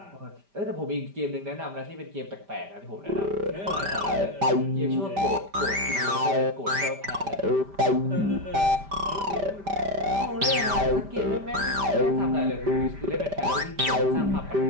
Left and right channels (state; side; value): late; left; 5.1 ms